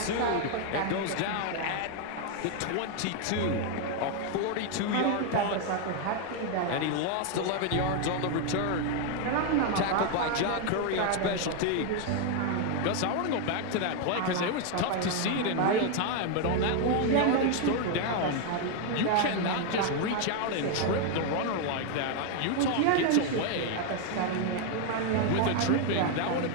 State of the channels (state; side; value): different; both; correlation 0.01